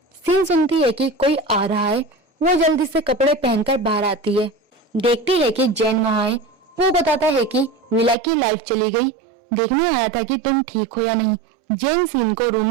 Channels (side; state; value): left; drops out; at 8.2 s